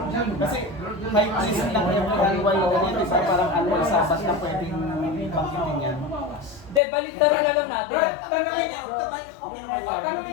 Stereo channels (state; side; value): drops out; right; at 6.8 s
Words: Kasi may reason lang yung kaliway ganyan, di ba? Parang ano, sabat na pwedeng bangkitin yan. Hindi, baliktaran na lang natin. Brad, Ay, tanongin. okay naman yun. Tanongin